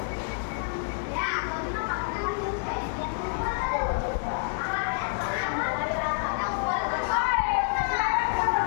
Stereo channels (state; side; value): silent; right; digital silence